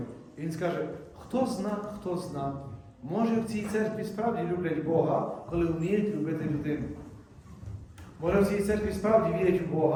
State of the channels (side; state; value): both; identical; correlation 1.00